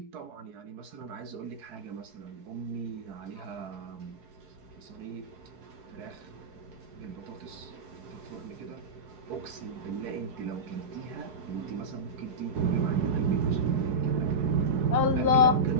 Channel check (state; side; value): late; left; 4.7 ms